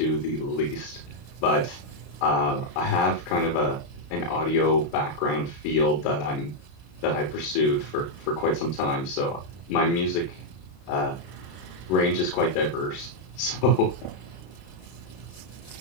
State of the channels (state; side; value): late; right; 32 ms